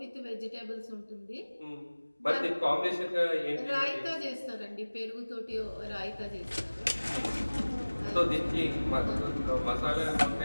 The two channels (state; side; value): inverted; both; correlation -1.00